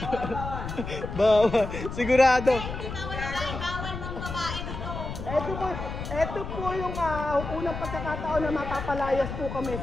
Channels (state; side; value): noise; left; rumble, 7 dB below the sound